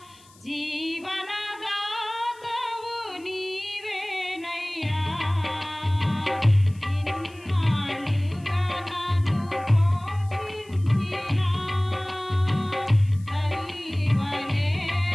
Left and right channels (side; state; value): left; noise; hiss, 27 dB below the sound